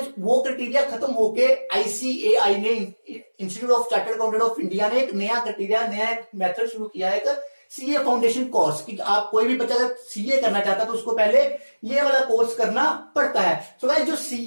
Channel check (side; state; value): both; inverted; correlation -1.00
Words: वो क्राइटेरिया खत्म होके आईसीएआई ने, institute of chartered accountant of India ने एक नया क्राइटेरिया, नया मेथड शुरू किया है, एक सीए फाउंडेशन कोर्स कि आप कोई भी बच्चा अगर सीए करना चाहता है तो उसको पहले ये वाला कोर्स करना पड़ता है। सो गाइस जो